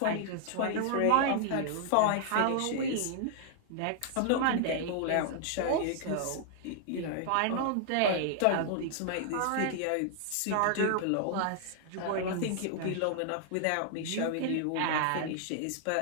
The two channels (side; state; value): both; different; correlation 0.00